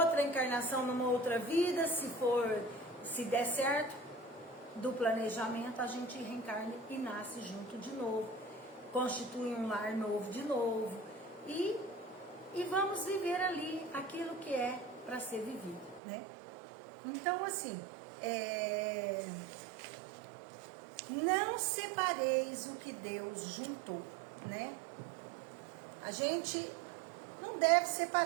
encarnação, numa outra vida, se der certo, do planejamento, a gente reencarna e nasce junto de novo. Constitui um lar novo de novo. E vamos viver ali aquilo que é para ser vivido, né? Então, assim, não separeis o que Deus juntou, né? A gente não deve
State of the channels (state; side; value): drops out; left; at 16.0 s